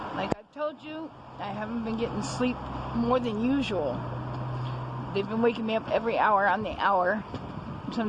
like I've told you, I haven't been getting sleep more than usual. They've been waking me up every hour on the hour.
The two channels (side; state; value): both; identical; correlation 1.00